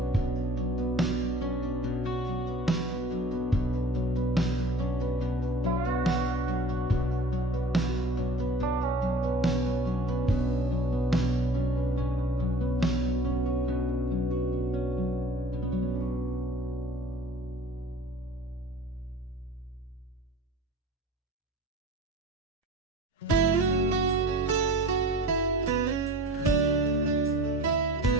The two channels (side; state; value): both; normal; correlation 0.44